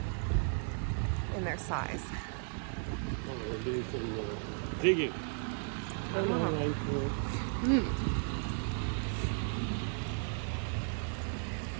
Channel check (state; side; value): silent; left; 54 dB below the other